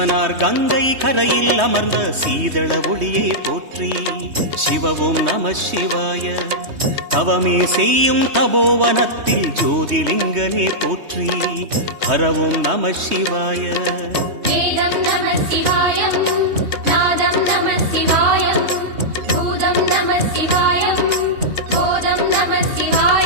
கங்கை கரையில் அமர்ந்த சீதள ஒளியே போற்றி. சிவ ஓம் நம சிவாய. தவமே செய்யும் தபோவனத்தில் ஜோதிலிங்கனே போற்றி. ஹர ஓம் நம சிவாய. வேதம் நம சிவாயம், நாதம் நம சிவாயம், பூதம் நம சிவாயம், போதம் நம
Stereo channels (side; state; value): left; late; 3.2 ms